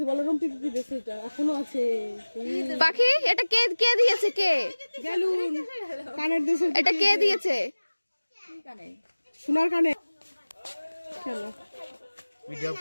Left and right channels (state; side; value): inverted; both; correlation -1.00